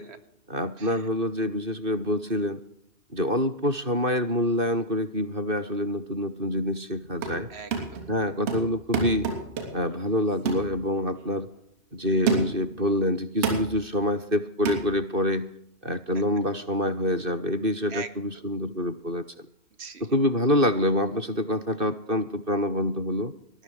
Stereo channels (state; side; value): late; left; 2.6 ms